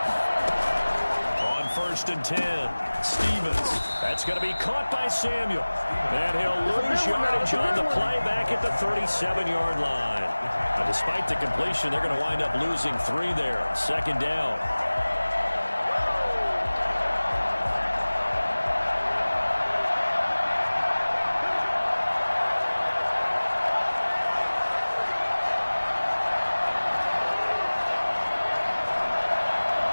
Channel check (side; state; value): both; inverted; correlation -1.00